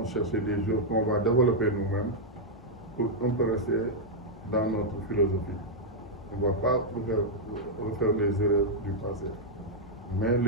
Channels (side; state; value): both; normal; correlation -0.04